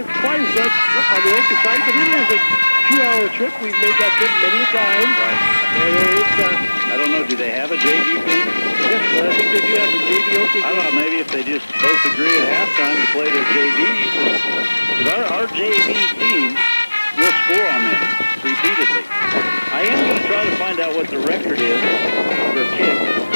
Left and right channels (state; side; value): inverted; both; correlation -1.00